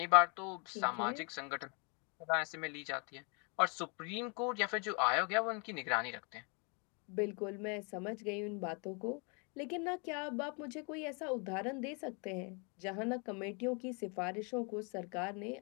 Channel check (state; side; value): quieter; right; 34.9 dB